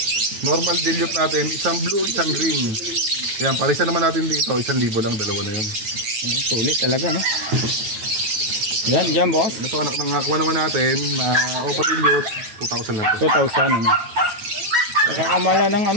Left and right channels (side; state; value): left; late; 9.3 ms